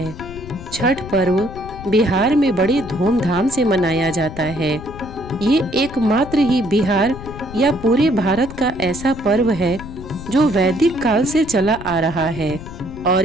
छठ पर्व बिहार में बड़े धूमधाम से मनाया जाता है। ये एकमात्र ही बिहार या पूरे भारत का ऐसा पर्व है जो वैदिक काल से चला आ रहा है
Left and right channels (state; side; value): noise; left; rumble, 13 dB below the sound